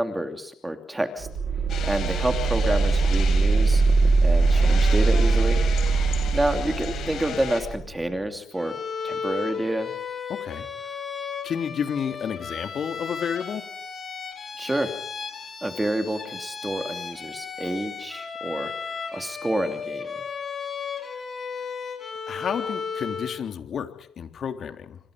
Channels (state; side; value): normal; both; correlation 0.88